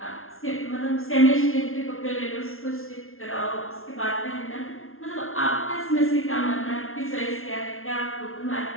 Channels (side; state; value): right; late; 0.62 ms